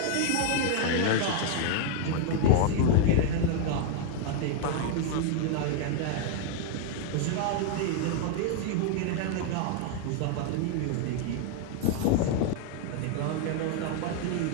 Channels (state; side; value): different; both; correlation 0.00